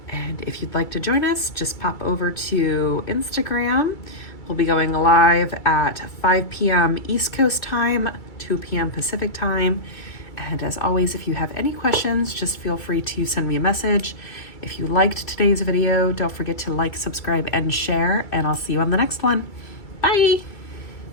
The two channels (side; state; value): right; late; 2.3 ms